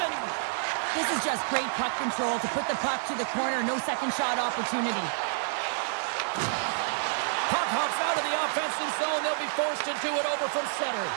This is just great puck control to put the puck to the corner. No second shot opportunity. Puck hops out of the offensive zone. They'll be forced to do it over from center.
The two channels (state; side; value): silent; left; 57 dB below the other